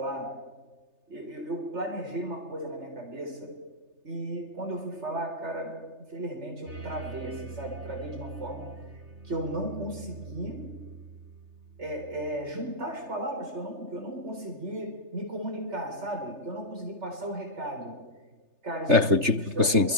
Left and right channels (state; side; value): late; left; 3.3 ms